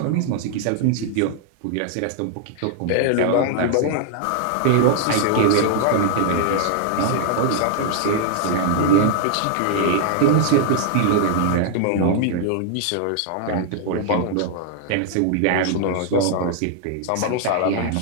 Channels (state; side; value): different; both; correlation 0.00